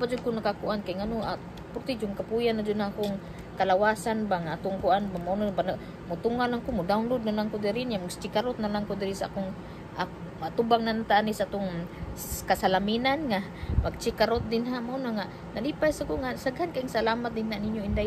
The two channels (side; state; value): both; identical; correlation 1.00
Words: jud ko nakakuan kay ngano purti jud kapuyan na jud akong kalawasan ba nga atong kuan ba mo mutungan lang ko mo download na lang ko diri nya mag-stickerot na lang ko diri sa akong matubang nan tani sa atong kasalaminan nga mag-stickerot din ha mo na nga nalipay sa ko nga saghan kayong salamat din na ninyo